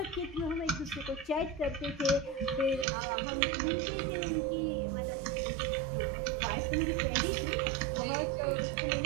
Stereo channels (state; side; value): drops out; left; at 2.9 s